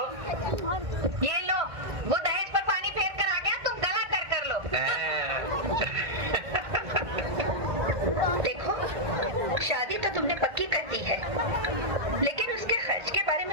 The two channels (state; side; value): late; left; 1.5 ms